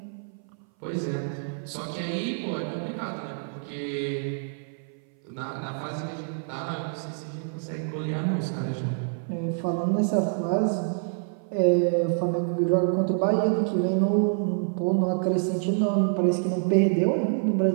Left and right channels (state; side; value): silent; left; 58 dB below the other